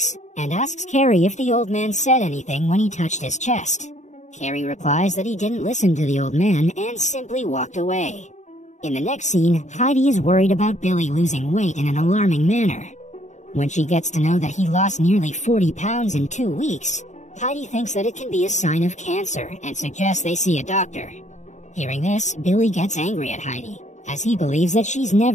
and asks Carey if the old man said anything when he touched his chest. Carey replies that he didn't listen to the old man and simply walked away. In the next scene, Heidi is worried about Billy losing weight in an alarming manner. When she gets to know that he lost nearly 40 pounds in 2 weeks, Heidi thinks that it can be a sign of cancer and suggests they see a doctor. Hearing this, Billy gets angry at Heidi, as he believes that she's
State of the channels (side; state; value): right; late; 0.34 ms